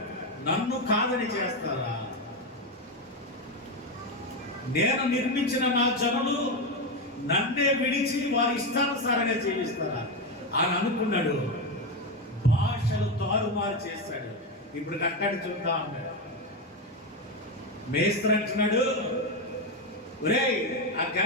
నన్ను కాదని చేస్తారా? నేను నిర్మించిన నా జనులు నన్నే విడిచి వారి ఇష్టానుసారంగా జీవిస్తారా అని అనుకున్నాడు. భాషలు తారుమారు చేస్తాడు. ఇప్పుడు కట్టడి చూద్దాం అన్నాడు. మేస్త్రి అంటున్నాడు, ఒరేయ్ ఆ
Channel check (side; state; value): both; normal; correlation 0.12